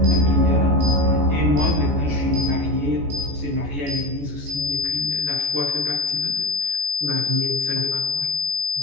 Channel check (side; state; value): left; late; 14 ms